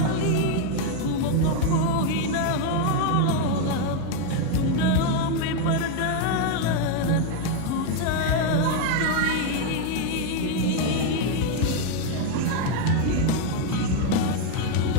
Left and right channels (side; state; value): both; different; correlation 0.01